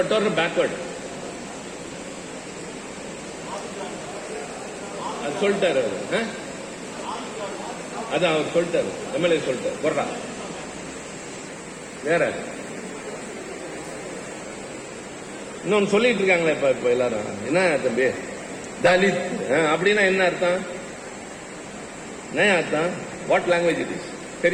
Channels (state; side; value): identical; both; correlation 1.00